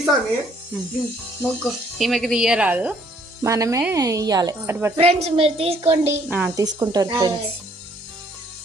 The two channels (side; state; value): both; normal; correlation 0.64